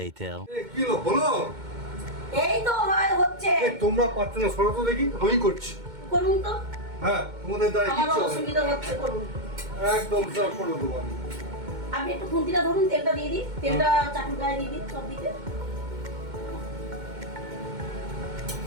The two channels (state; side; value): late; left; 2.1 ms